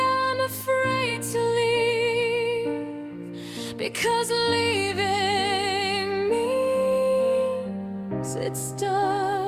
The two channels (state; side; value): identical; both; correlation 1.00